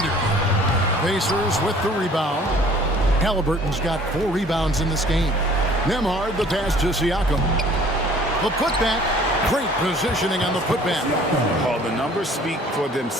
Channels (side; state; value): both; normal; correlation 0.53